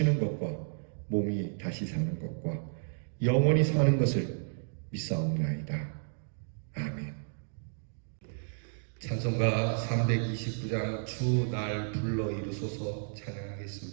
것과 몸이 다시 사는 것과 영원히 사는 것을 믿사옵나이다. 아멘. 찬송가 329장 주 날 불러 이루소서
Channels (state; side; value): silent; left; digital silence